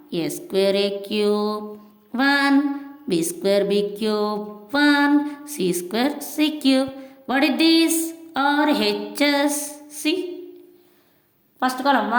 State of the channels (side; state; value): both; identical; correlation 1.00